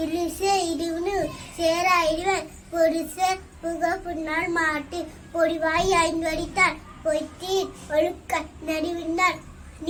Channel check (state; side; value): identical; both; correlation 1.00